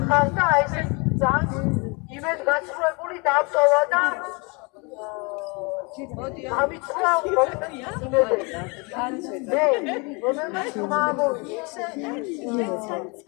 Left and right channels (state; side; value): quieter; right; 30.5 dB